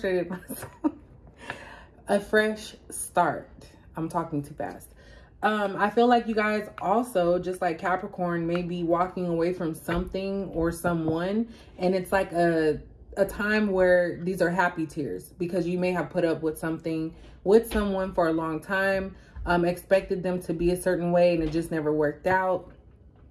myself. A fresh start. I'm talking too fast. I feel like you guys also, just like Capricorn, may be walking away from something or someone, and it's like a time where these are happy tears because you may have put up with something with someone for a long time, expected them to be a certain way and it just never worked out.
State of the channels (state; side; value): identical; both; correlation 1.00